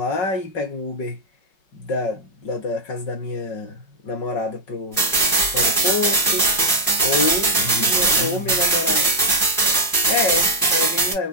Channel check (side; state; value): right; late; 5.3 ms